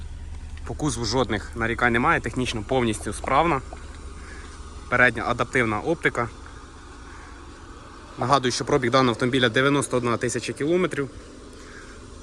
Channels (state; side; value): identical; both; correlation 1.00